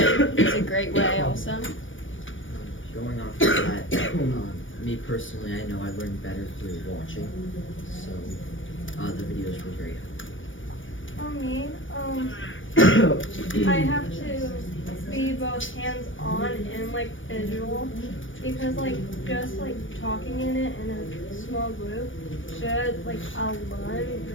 is a great way also. Going off of that, me personally, I know I learned better through watching, so the videos were very helpful. For me, I have to be both hands-on and visual, because just talking in it in a small group should I'll learn,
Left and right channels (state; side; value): late; right; 0.57 ms